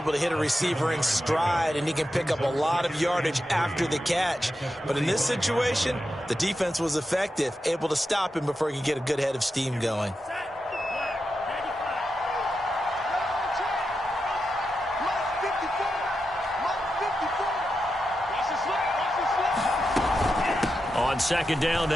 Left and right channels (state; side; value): normal; both; correlation 0.88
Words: to hit a receiver in stride, and he can pick up a lot of yardage after the catch. But in this situation, the defense was effective, able to stop him before he could get a good head of steam going. On second down